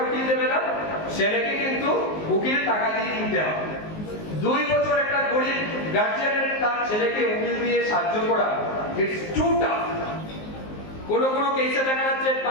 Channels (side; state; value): right; late; 19 ms